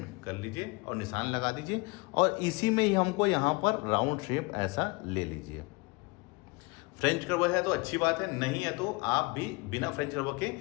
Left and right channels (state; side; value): quieter; right; 26.4 dB